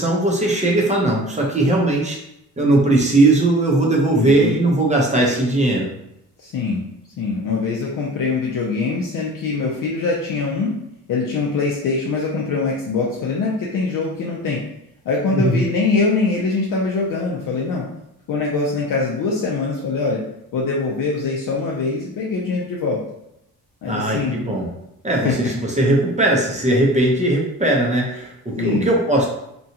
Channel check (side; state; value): both; normal; correlation 0.36